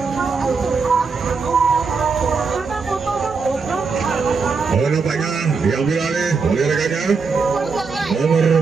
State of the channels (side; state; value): left; quieter; 4.8 dB